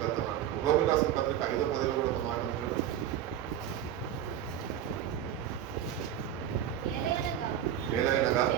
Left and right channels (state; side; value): quieter; left; 10.4 dB